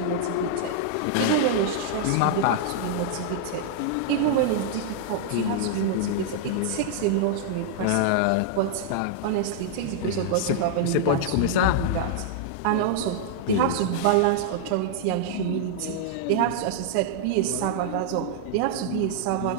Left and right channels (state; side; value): different; both; correlation -0.01